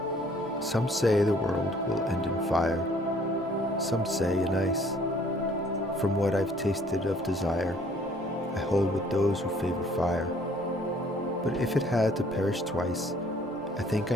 Some say the world will end in fire. Some say in ice. From what I've tasted of desire, I hold with those who favor fire. But if it had to perish twice, I think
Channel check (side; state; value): both; normal; correlation 0.59